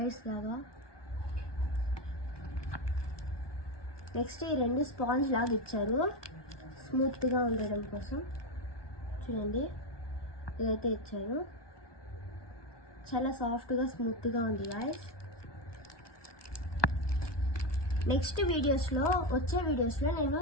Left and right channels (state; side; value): late; right; 1.2 ms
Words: లాగా. నెక్స్ట్ ఈ 2 స్పాంజ్ లాగా ఇచ్చారు స్మూత్గా ఉండడం కోసం. చూడండి, ఇదైతే ఇచ్చారు. చాలా సాఫ్ట్గా స్మూత్గా ఉంది గాయస్. నెక్స్ట్ వచ్చే వీడియోస్లో నేను